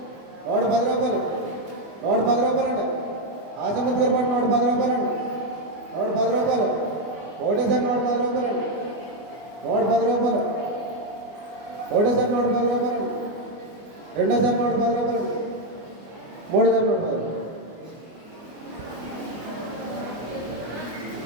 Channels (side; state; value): left; late; 24 ms